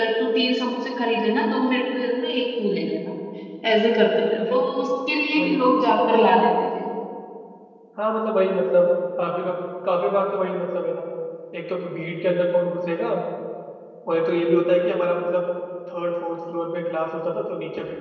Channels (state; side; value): identical; both; correlation 1.00